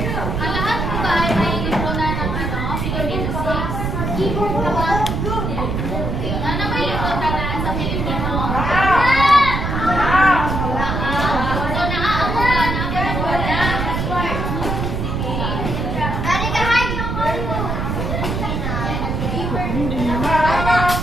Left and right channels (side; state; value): right; noise; rumble, 2 dB below the sound